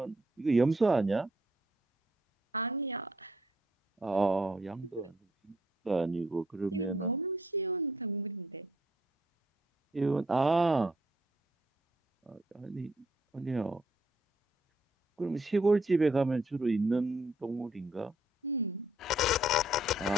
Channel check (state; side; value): normal; both; correlation 0.69